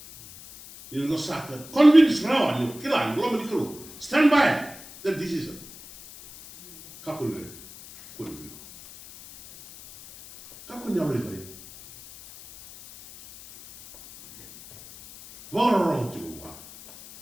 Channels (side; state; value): left; noise; hiss, 18 dB below the sound